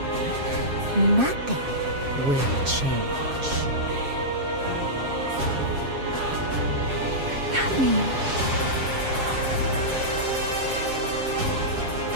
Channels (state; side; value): late; left; 7.4 ms